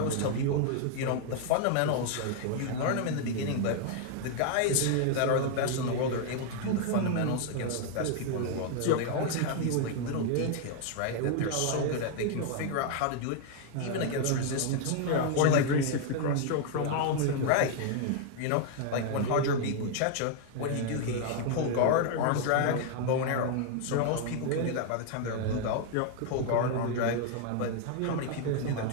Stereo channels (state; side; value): different; both; correlation 0.00